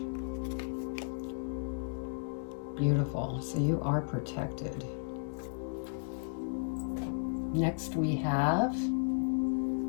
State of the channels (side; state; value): right; silent; digital silence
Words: Beautiful. So you are protected. Next we have